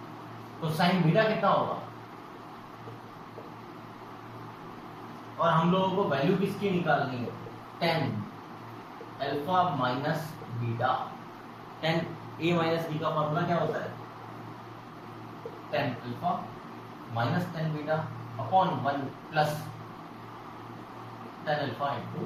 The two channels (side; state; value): both; identical; correlation 1.00